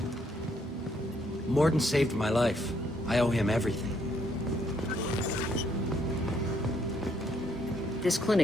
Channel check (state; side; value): normal; both; correlation 0.71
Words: Morden saved my life. I owe him everything. This